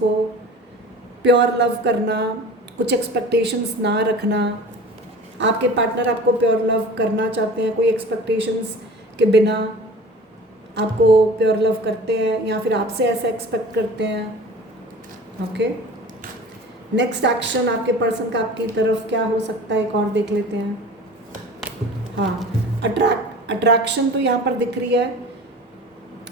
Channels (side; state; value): both; normal; correlation 0.40